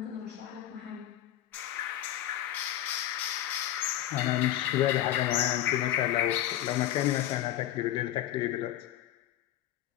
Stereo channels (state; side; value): quieter; right; 12.8 dB